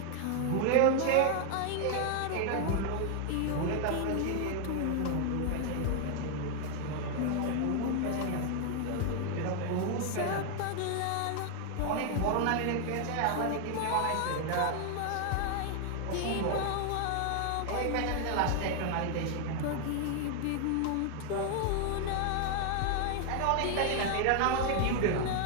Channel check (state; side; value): different; both; correlation 0.00